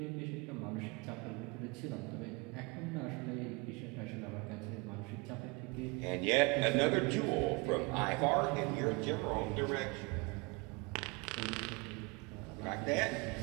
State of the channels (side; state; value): left; quieter; 28.8 dB